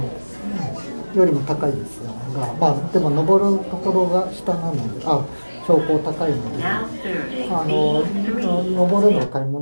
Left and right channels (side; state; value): both; inverted; correlation -1.00